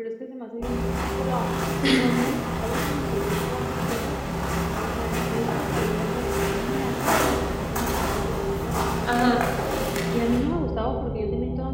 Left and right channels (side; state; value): both; identical; correlation 1.00